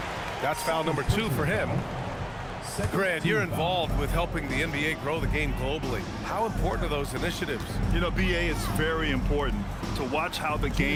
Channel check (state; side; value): identical; both; correlation 1.00